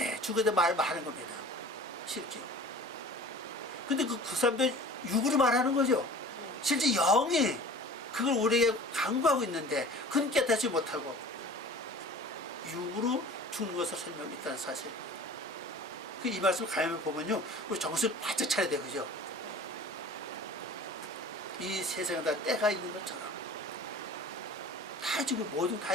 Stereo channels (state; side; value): normal; both; correlation 0.42